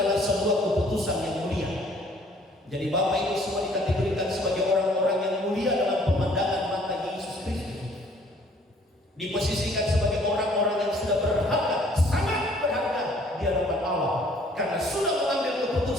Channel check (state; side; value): normal; both; correlation 0.59